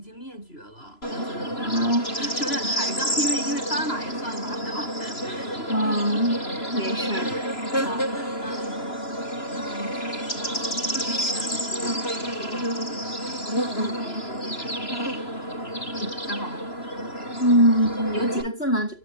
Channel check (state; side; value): late; right; 3.0 ms